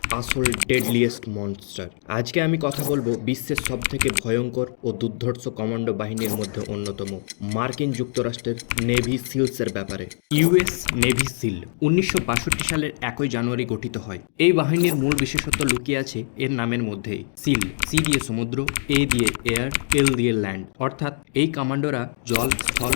আসল ডেডলিয়েস্ট মনস্টার। আজকে আমি কথা বলবো বিশ্বের সবথেকে ভয়ঙ্কর ও দুর্ধর্ষ কমান্ডো বাহিনীর মধ্যে অন্যতম মার্কিন যুক্তরাষ্ট্রের নেভি সিলসের ব্যাপারে। ইউএস নেভি সিল 1962 সালের 1 জানুয়ারি গঠিত হয়। এই বাহিনীর মূল বিশেষত্ব লুকিয়ে আছে এর নামের মধ্যেই। সিল, সি দিয়ে সমুদ্র, এ দিয়ে এয়ার, এল দিয়ে ল্যান্ড, অর্থাৎ এই কমান্ডোরা জল, স্থল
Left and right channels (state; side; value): silent; right; 63 dB below the other